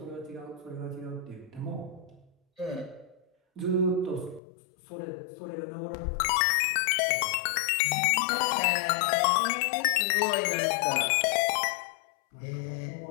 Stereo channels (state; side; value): drops out; right; at 4.4 s